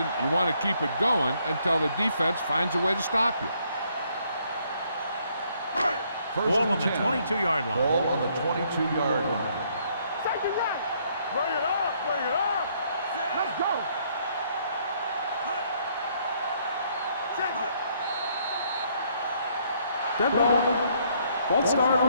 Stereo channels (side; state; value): both; inverted; correlation -0.68